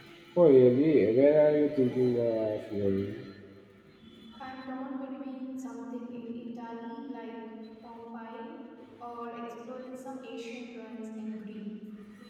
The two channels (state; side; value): identical; both; correlation 1.00